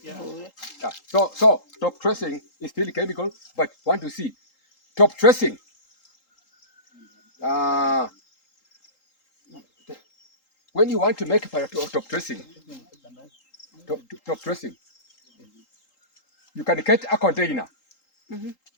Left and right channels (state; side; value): late; right; 3.8 ms